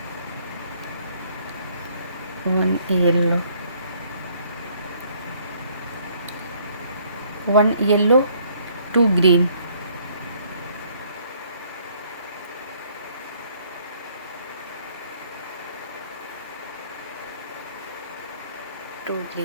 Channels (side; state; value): both; inverted; correlation -0.64